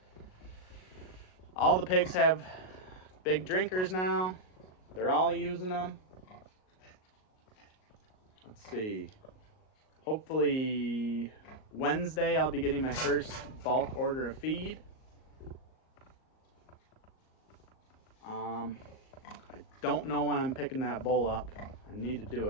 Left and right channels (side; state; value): right; late; 38 ms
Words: All the pigs have big drinkers now. They're all using them. Let's see. Hopefully Wednesday I'll be getting my first bulk order of feed. I don't know when I'm picking that bull up. I need to do